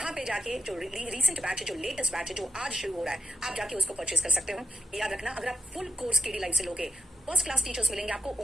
पे जाके जो रिसेंट बैच है, जो लेटेस्ट बैच है, जो आज शुरू हो रहा है, आप जाके उसको परचेज कर सकते हो। याद रखना, अगर आप फुल कोर्स केडी लाइव से लोगे, फर्स्ट क्लास टीचर्स मिलेंगे आपको,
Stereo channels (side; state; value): both; normal; correlation 0.85